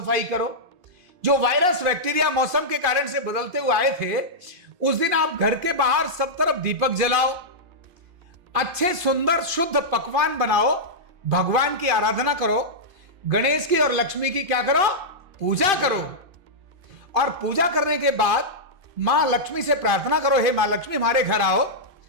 करो। जो वायरस, बैक्टीरिया मौसम के कारण से बदलते हुए आए थे, उस दिन आप घर के बाहर सब तरफ दीपक जलाओ, अच्छे सुंदर शुद्ध पकवान बनाओ, भगवान की आराधना करो, गणेश की और लक्ष्मी की क्या करो? पूजा करो। और पूजा करने के बाद मां लक्ष्मी से प्रार्थना करो, हे मां लक्ष्मी हमारे घर आओ।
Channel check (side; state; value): left; late; 2.6 ms